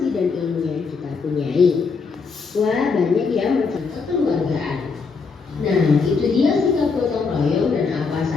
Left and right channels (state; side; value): quieter; right; 4.9 dB